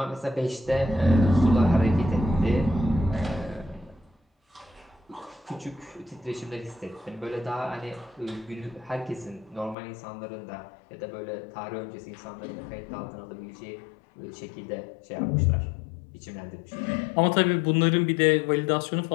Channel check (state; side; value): drops out; right; at 9.8 s